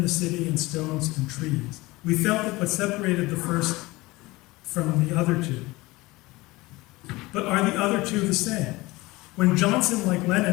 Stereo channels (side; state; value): right; quieter; 21.1 dB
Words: the city and stones and trees. We felt that what separated the first from the other two. But are the other two the same? When Johnson, like